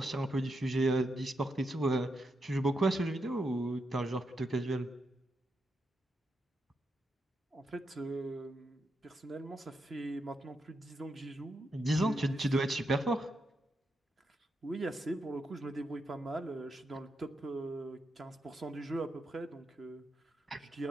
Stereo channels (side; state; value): both; normal; correlation 0.84